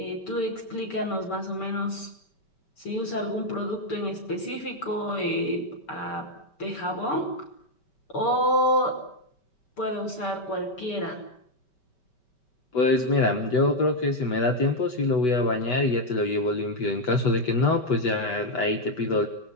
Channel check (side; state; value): right; late; 5.2 ms